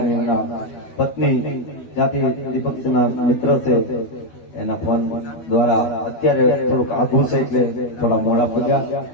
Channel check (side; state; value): right; late; 12 ms